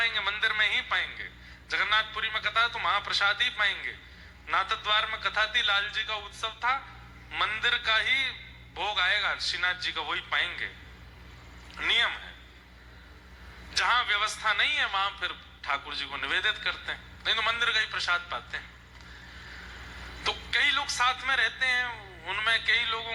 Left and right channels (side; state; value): both; identical; correlation 1.00